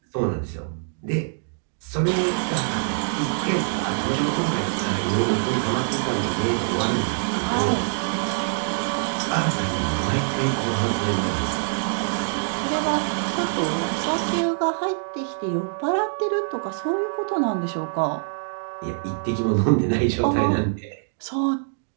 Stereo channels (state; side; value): silent; left; 62 dB below the other